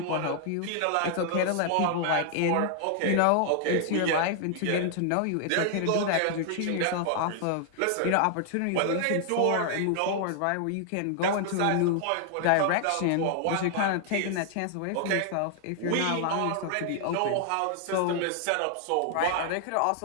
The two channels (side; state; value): both; different; correlation 0.00